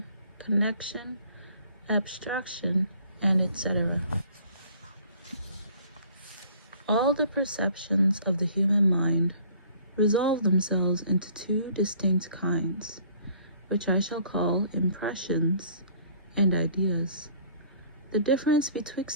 connection, abstraction, and etc. All the perceptions of the human mind resolve themselves into two distinct kinds, which I shall call impressions and ideas. The difference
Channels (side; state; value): both; inverted; correlation -0.55